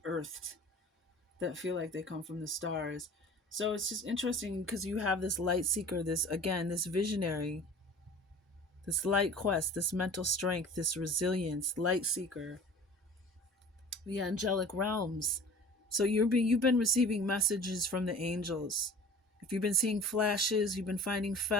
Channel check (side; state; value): both; normal; correlation 0.42